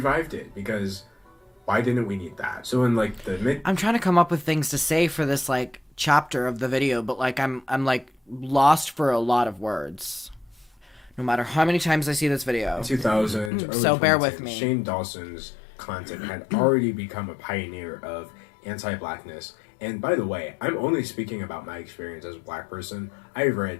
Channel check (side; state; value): right; drops out; at 13.5 s